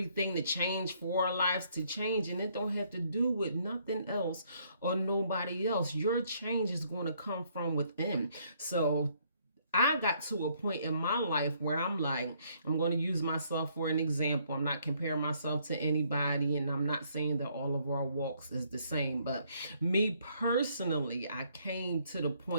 to change, for our lives to change. And it don't have to do with nothing else or nobody else. Your change is going to come from within. So I got to a point in my life where I'm like, I'm going to use myself for an example. I'm not comparing myself to anybody, and I'm not saying that all of our walks is the same. But me personally, I came to the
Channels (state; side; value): inverted; both; correlation -0.68